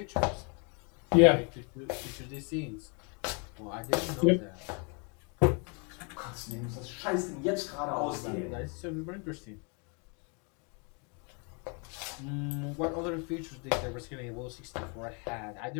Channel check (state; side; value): quieter; right; 35.3 dB